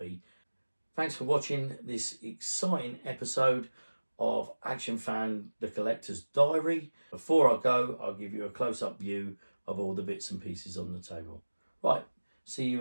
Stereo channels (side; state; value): both; inverted; correlation -1.00